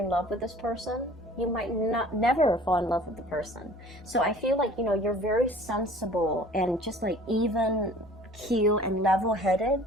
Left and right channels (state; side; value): normal; both; correlation 0.48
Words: love with this person, you might never fall in love with the person. So I feel like, you know, you're very sensible and just like even keel and level-headed